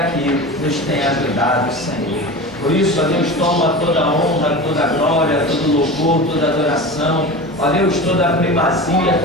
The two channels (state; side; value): normal; both; correlation 0.31